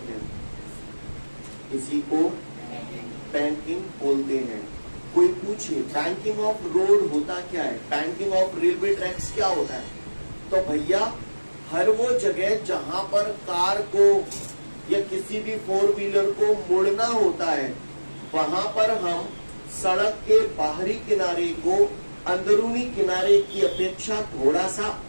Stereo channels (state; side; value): inverted; both; correlation -1.00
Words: हैं, इसी को बैंकिंग बोलते हैं. कोई पूछे बैंकिंग ऑफ रोड होता क्या है, बैंकिंग ऑफ रेलवे ट्रैक्स क्या होता है? तो भैया हर वो जगह जहां पर कार को या किसी भी फोर व्हीलर को मुड़ना होता है वहां पर हम सड़क के बाहरी किनारे को अंदरूनी किनारे की अपेक्षा थोड़ा सा